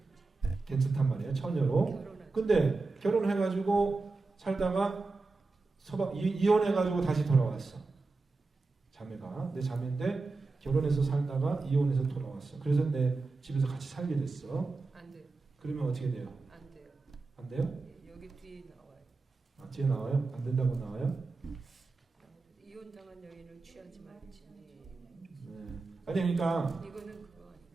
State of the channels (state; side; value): quieter; left; 3.7 dB